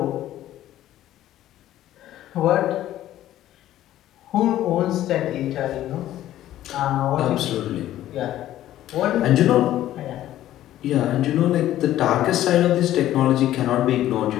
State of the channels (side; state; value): right; quieter; 13.3 dB